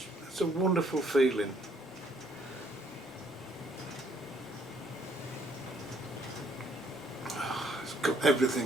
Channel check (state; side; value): normal; both; correlation 0.66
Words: It's a wonderful feeling.